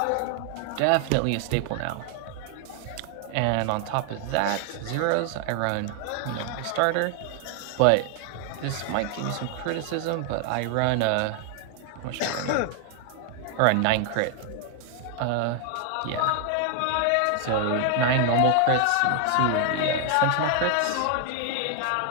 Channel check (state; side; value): different; both; correlation 0.00